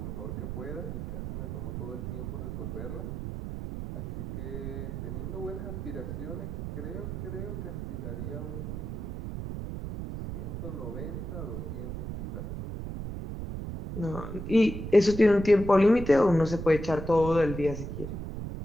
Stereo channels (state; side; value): noise; right; rumble, 6 dB below the sound